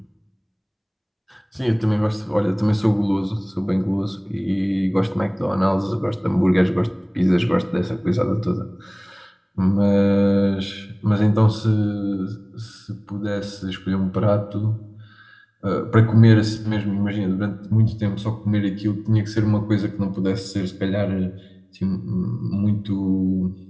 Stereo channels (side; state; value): both; identical; correlation 1.00